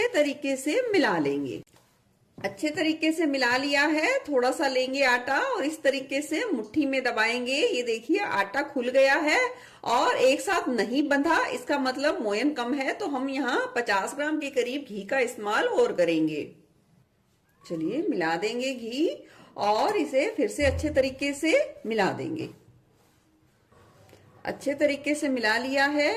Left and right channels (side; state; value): both; identical; correlation 1.00